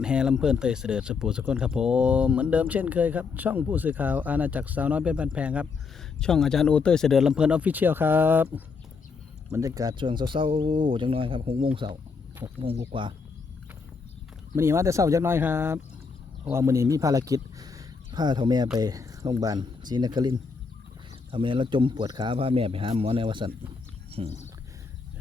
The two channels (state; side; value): quieter; right; 5.0 dB